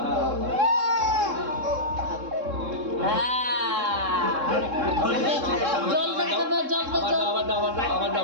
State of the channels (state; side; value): late; left; 3.7 ms